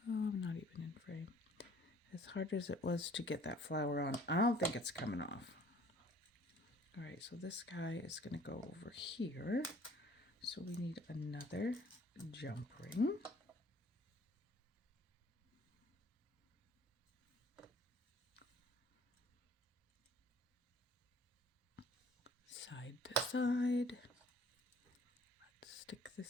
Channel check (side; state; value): both; normal; correlation 0.54